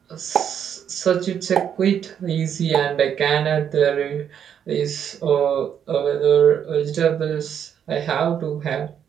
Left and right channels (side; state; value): left; quieter; 8.6 dB